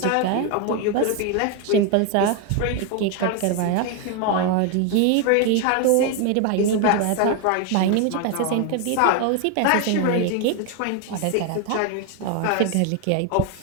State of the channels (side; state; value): both; different; correlation 0.01